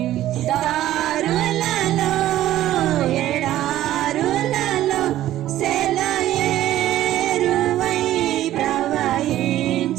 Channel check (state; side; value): quieter; left; 13.6 dB